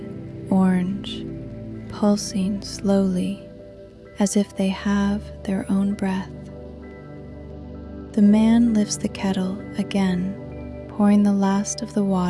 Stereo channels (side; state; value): both; identical; correlation 1.00